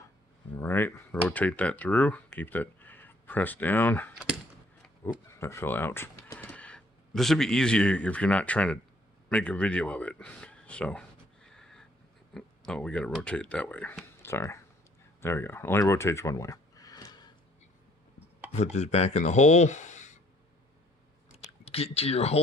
All right, rotate that through. Keep that pressed down. Oop, that fell out. This would be easier if you're not trying to make a video of it. So, oh, we got to rotate it that way. Sorry. There we go. Only rotates one way. Put this back in the hole. Get to your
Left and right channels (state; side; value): normal; both; correlation 0.62